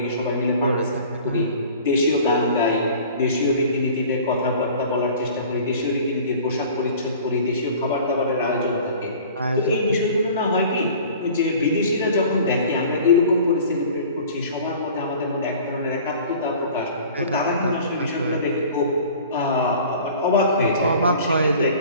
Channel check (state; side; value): inverted; both; correlation -0.45